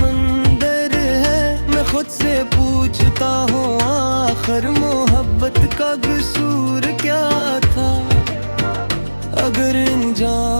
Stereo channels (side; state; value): both; inverted; correlation -1.00